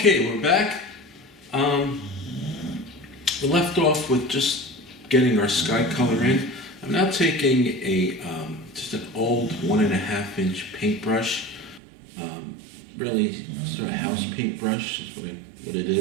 we're back. We left off with just getting our sky color in. I'm now taking a just an old 1.5 inch paintbrush, really sort of house paintbrush is what it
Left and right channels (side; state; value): left; drops out; at 11.8 s